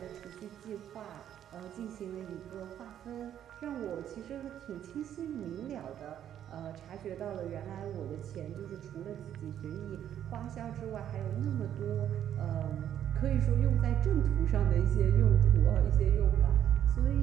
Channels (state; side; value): quieter; left; 10.4 dB